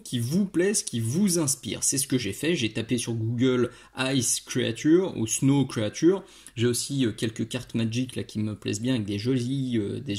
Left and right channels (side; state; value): both; identical; correlation 1.00